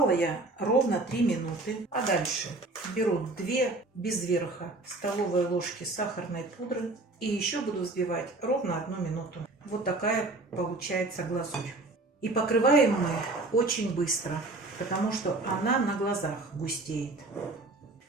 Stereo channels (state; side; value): quieter; left; 3.0 dB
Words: я ровно 3 минуты. А дальше беру 2 без верха столовые ложки сахарной пудры. И еще буду взбивать ровно 1 минуту. Вот такая получается глазурь. И покрываем мы очень быстро, потому что она на глазах густеет.